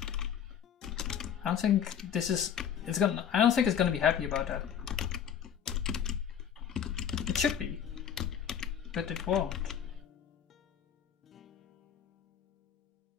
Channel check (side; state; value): right; quieter; 8.7 dB